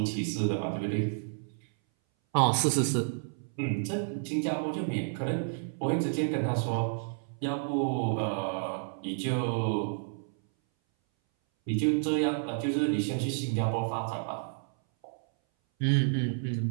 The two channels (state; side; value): silent; left; 58 dB below the other